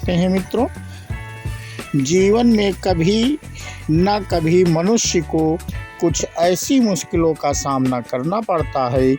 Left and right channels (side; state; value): both; identical; correlation 1.00